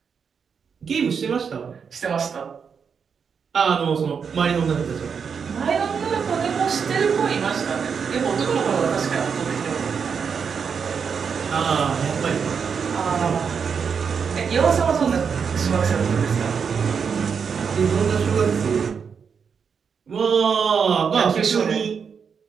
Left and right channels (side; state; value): left; quieter; 6.4 dB